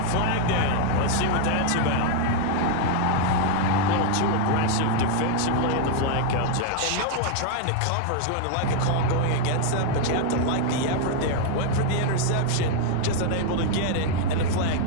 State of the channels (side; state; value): both; different; correlation 0.00